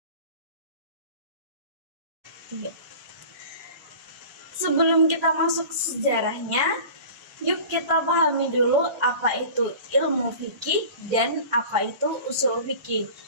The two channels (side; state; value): left; late; 1.5 ms